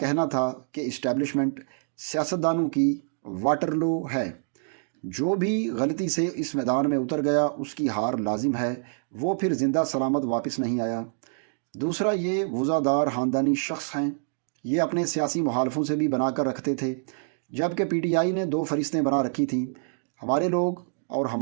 تھا کہ اسٹیبلشمنٹ سیاستدانوں کی واٹرلو ہے۔ جو بھی غلطی سے اس میدان میں اتر گیا اس کی ہار لازم ہے، وہ پھر زندہ سلامت واپس نہیں آیا۔ دوسرا، یہ وزادار خاندانی شخص ہیں۔ یہ اپنے سیاسی مخالفوں سے بھی بنا کر رکھتے تھے، جبکہ پی ٹی آئی نے دو فہرستیں بنا رکھی تھیں، ہمارے لوگ اور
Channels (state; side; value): silent; left; digital silence